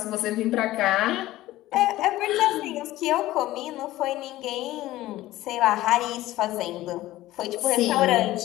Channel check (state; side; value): quieter; right; 16.2 dB